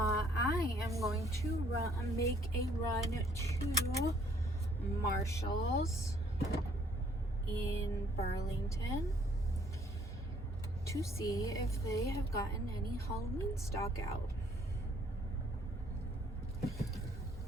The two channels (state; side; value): normal; both; correlation 0.63